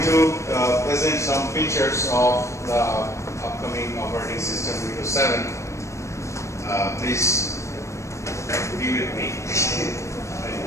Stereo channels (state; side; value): late; right; 0.14 ms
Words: to present some features of the upcoming operating system Windows 7. Please be with me.